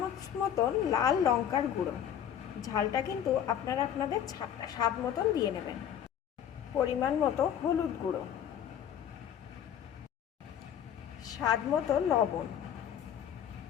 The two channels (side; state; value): right; quieter; 9.5 dB